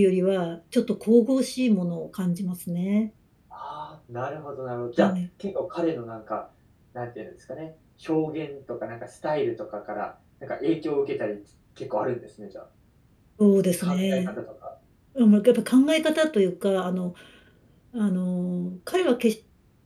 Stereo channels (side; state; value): both; identical; correlation 1.00